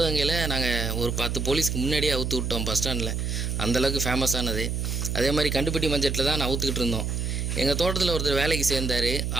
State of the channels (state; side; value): noise; right; hum, 1 dB below the sound